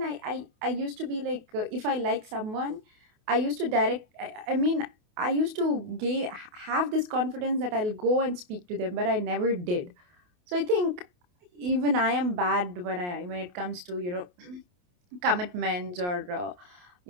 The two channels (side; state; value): left; late; 28 ms